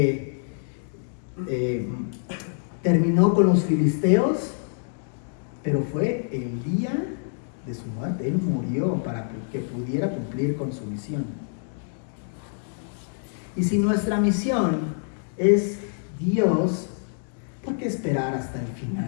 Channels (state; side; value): silent; right; digital silence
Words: terminó con los filisteos, pero fue el día de su muerte. Él murió para que pudiera cumplir con su misión. Y si nuestra misión es Dios, ¿por qué esperar hasta el